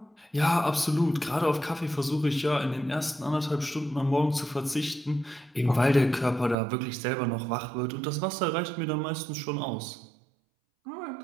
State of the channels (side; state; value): left; drops out; at 6.6 s